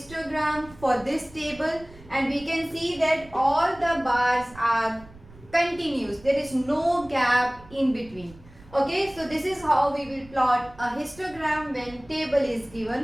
for this table, and we can see that all the bars are continuous. There is no gap in between. Okay, so this is how we will plot a histogram when table is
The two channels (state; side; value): noise; right; rumble, 22 dB below the sound